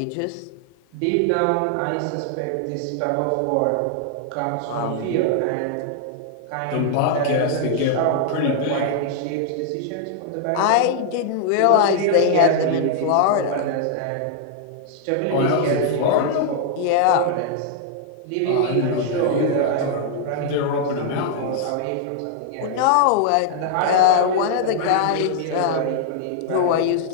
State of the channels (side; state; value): both; different; correlation -0.01